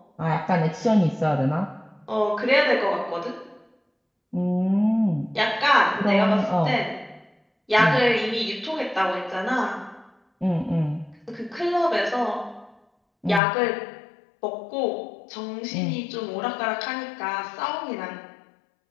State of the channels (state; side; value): drops out; right; at 13.4 s